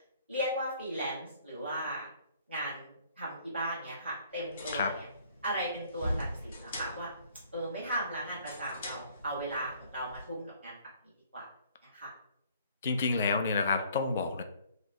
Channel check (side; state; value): both; inverted; correlation -0.59